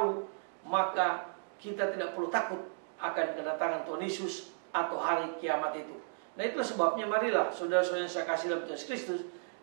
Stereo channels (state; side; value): silent; left; digital silence